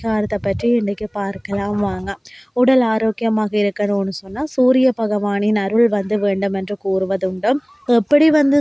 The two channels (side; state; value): both; identical; correlation 1.00